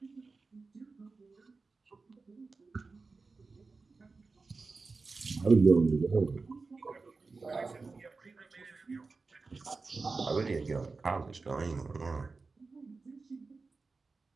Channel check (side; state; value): left; quieter; 4.1 dB